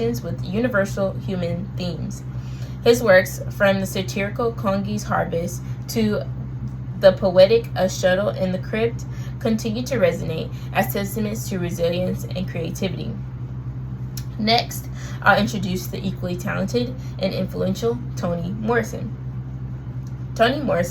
with universal human themes. His works, from the satirical Kongi's Harvest to the poetic A Shuttle in the Crypt, continue to resonate as testaments to resilience and creativity. Next, I'll introduce the equally talented and influential Toni Morrison. Toni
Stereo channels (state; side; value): identical; both; correlation 1.00